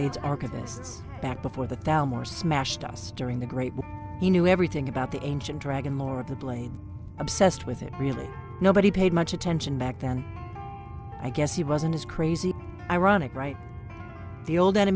archivists, back before the Thalmor smashed us during the Great War. He knew everything about the ancient dragon lore of the Blade. Obsessed with it, really. Nobody paid much attention back then. I guess he wasn't as crazy. Ironic, right? The old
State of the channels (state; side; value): identical; both; correlation 1.00